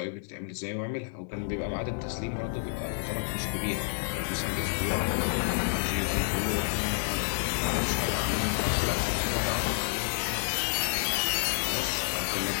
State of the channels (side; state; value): right; silent; digital silence